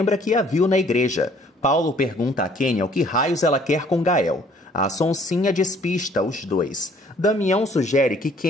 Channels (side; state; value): both; normal; correlation 0.59